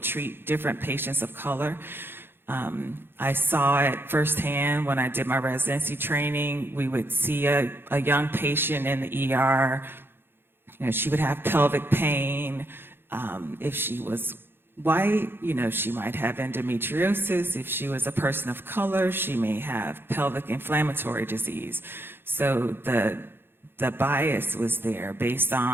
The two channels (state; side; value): late; left; 0.10 ms